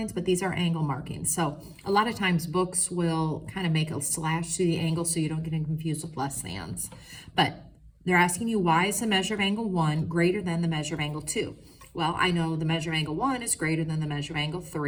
but these are angle markings. So a lot of times books will kind of make a slash through the angle so you don't get confused with less thans. But they're asking you, why is the measure of angle 1 greater than the measure of angle 2? Well, I know the measure of angle 1 is greater than the measure of angle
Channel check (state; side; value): identical; both; correlation 1.00